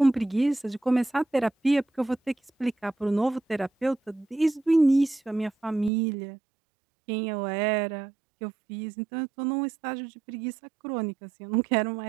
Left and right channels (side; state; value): left; drops out; at 5.9 s